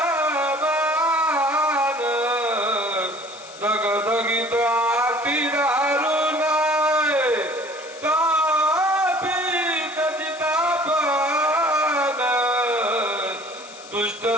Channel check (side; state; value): left; noise; hiss, 19 dB below the sound